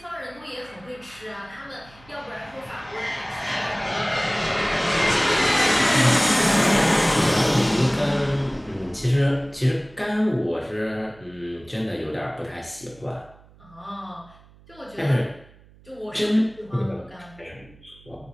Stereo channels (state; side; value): noise; right; hum, 25 dB below the sound